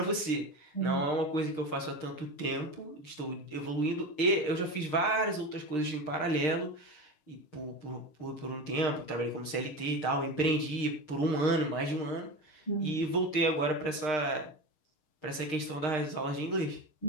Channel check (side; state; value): right; late; 6.5 ms